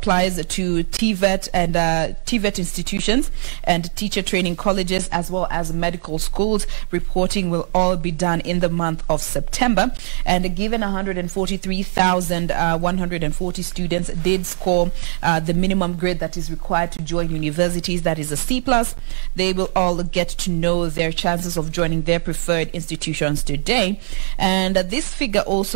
to TVET and TVET institutions and teacher training colleges, as well as medical schools. Reporting will all be done in the month of September. And given 143,140 students did score the minimum grade that is required to join universities, that is a C+, they will all get to know their chances of joining their preferred institutions today. And this figure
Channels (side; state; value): left; silent; digital silence